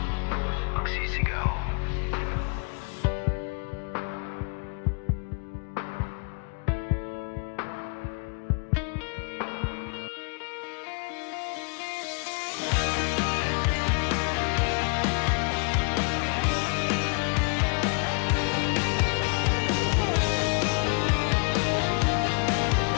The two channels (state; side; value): quieter; right; 38.0 dB